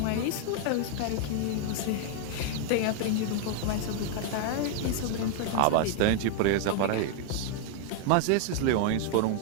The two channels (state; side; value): different; both; correlation 0.00